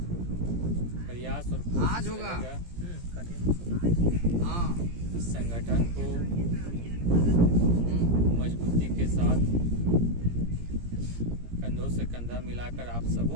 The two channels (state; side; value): late; left; 17 ms